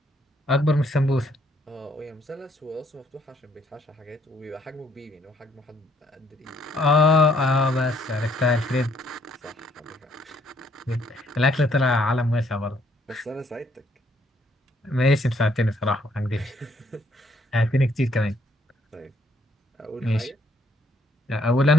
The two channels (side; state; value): both; normal; correlation 0.68